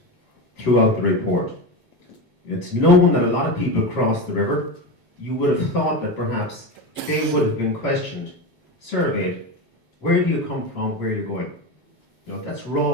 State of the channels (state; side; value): late; right; 8.2 ms